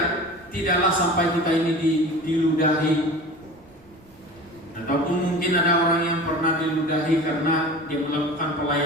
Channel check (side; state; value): right; noise; rumble, 28 dB below the sound